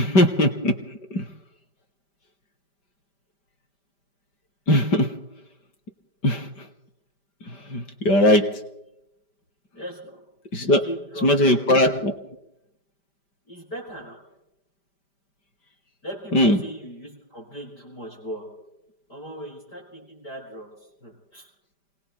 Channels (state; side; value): late; right; 5.1 ms